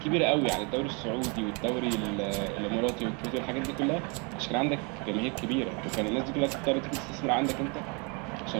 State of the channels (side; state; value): left; quieter; 32.8 dB